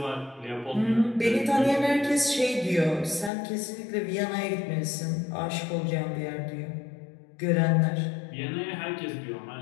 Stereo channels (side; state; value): right; drops out; at 3.3 s